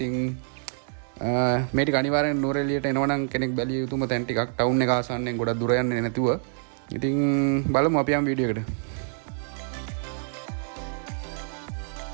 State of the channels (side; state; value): left; silent; 61 dB below the other